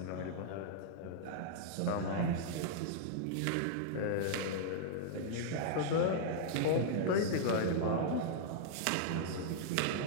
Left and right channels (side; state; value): both; different; correlation -0.01